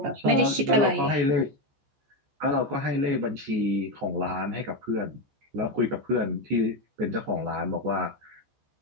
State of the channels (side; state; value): left; late; 14 ms